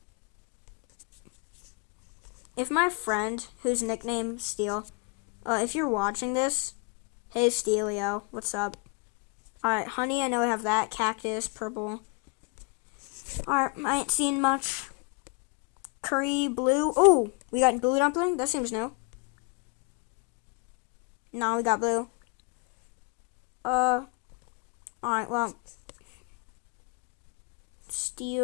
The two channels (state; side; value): quieter; right; 32.4 dB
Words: If my friend, whose nickname Steel, if you're watching this, hey Steelio, what's up? Alright, honey, I know I have that. Cactus, purple. Alright, I ain't seen much. Curry, blue. Oh, we got blue dumpling? That seems new. No, we got blue. Alright, well.